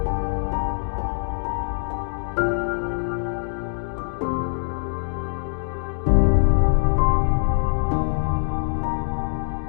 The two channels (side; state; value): right; silent; digital silence